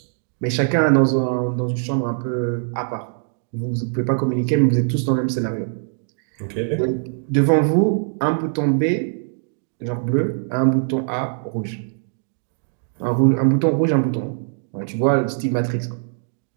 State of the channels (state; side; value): silent; left; digital silence